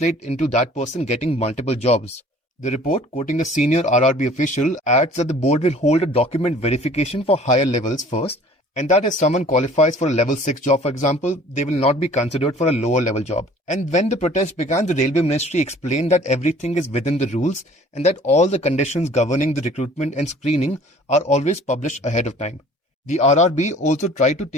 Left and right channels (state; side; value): normal; both; correlation 0.50